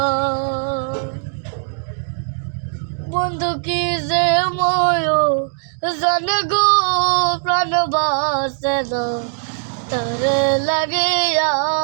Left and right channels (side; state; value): left; silent; digital silence